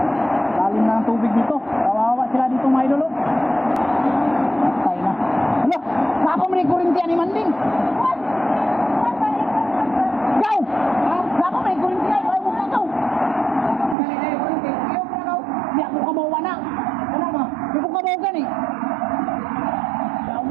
Lalim na ng tubig dito. Kawawa sila dito mga idol. Patay na. Hala, napa man yung kurinti ni Manding. Go! Napa man yung kurinti ay huwag na ito. Di ako kamawa na. Ano ba? Di ko kamawa gani.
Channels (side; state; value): left; drops out; at 14.0 s